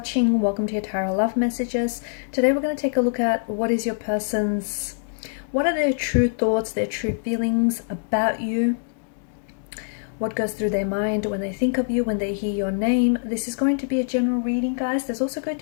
Welcome to your Tarot Love Messages. Today we're going to take a look at what are their true thoughts, their true feelings about you, what goes through their mind when they think of you, when they hear your name. This is going to be a general reading, guys. There's also going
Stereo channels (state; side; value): silent; right; 63 dB below the other